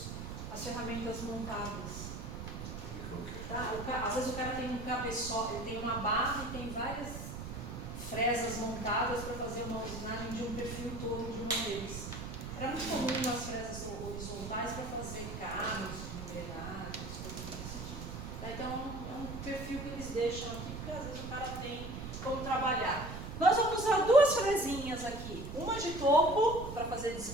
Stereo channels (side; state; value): right; noise; rumble, 8 dB below the sound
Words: as ferramentas montadas. Tá? Às vezes o cara tem um cabeçote, ele tem uma barra e tem várias fresas montadas para fazer uma usinagem de um perfil todo de uma vez. Era muito comum as fresas horizontais para fazer carros, engrenagens, coisas desse tipo. Tá? Então é um perfil que eles deixam aqui, porque às vezes o cara tem como trabalhar. Nós vamos usar duas fresinhas aqui, uma de topo para fazer